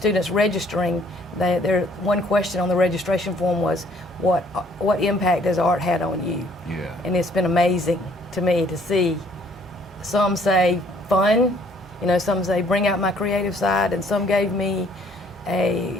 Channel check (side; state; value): both; normal; correlation 0.61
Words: registering. One question on the registration form was, what impact has art had on you? Yeah. And it's been amazing to me to see. Some say fun, some say bring out my creative side, and some gave me a